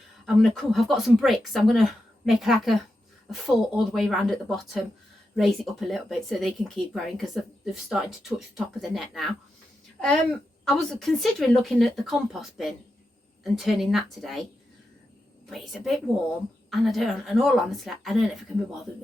I'm going to come, I've got some bricks, so I'm going to make like a fort all the way around at the bottom, raise it up a little bit so they can keep growing, because they've started to touch the top of the net now. I was considering looking at the compost bin and turning that today, but it's a bit warm and in all honesty, I don't know if I can be bothered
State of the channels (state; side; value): normal; both; correlation 0.88